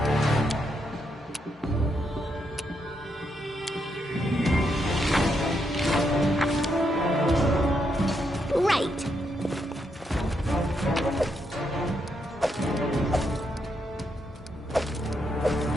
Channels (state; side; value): normal; both; correlation 0.79